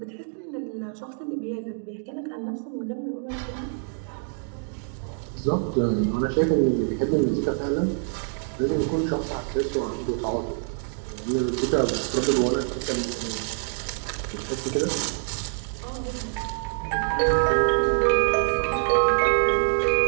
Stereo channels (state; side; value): silent; left; 61 dB below the other